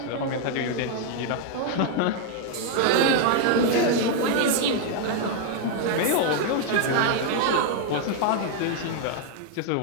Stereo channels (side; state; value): both; different; correlation 0.00